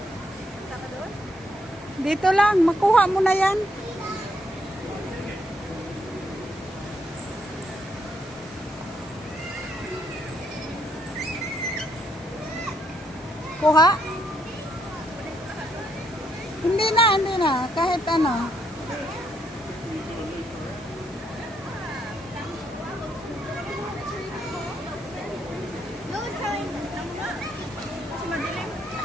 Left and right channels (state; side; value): normal; both; correlation 0.74